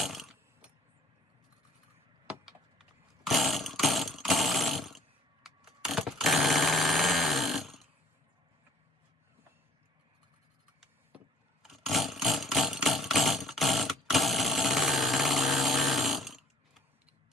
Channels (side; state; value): both; normal; correlation 0.55